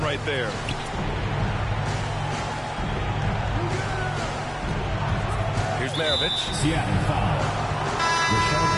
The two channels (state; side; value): identical; both; correlation 1.00